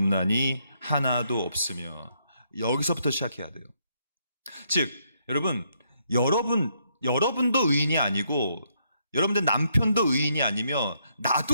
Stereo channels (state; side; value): inverted; both; correlation -0.75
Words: 하나도 없으며. 여기서부터 시작해야 돼요. 즉 여러분도 의인이 아니고 여러분들 남편도 의인이 아니며